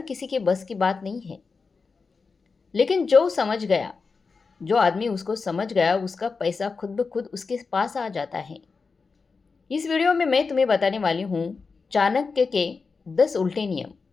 किसी के बस की बात नहीं है। लेकिन जो आदमी उसको समझ गया, उसका पैसा खुद ब खुद उसके पास आ जाता है। इस वीडियो में मैं तुम्हें बताने वाली हूँ चाणक्य के 10 उल्टे नियम,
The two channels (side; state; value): right; quieter; 4.7 dB